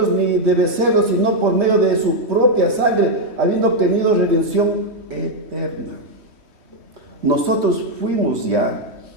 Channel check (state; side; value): late; left; 3.2 ms